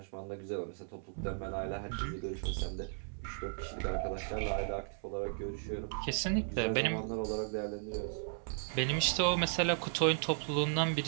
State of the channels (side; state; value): left; silent; 54 dB below the other